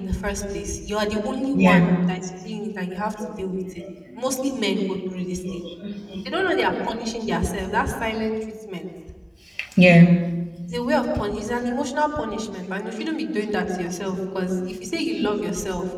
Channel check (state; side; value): identical; both; correlation 1.00